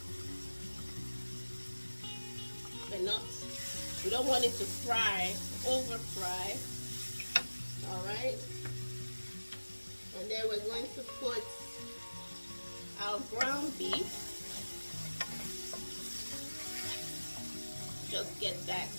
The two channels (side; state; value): both; inverted; correlation -1.00